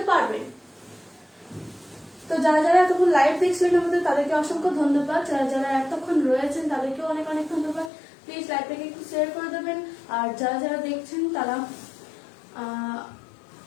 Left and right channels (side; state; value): right; drops out; at 7.9 s